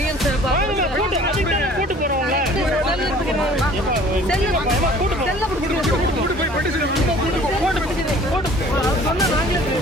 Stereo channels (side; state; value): both; normal; correlation 0.50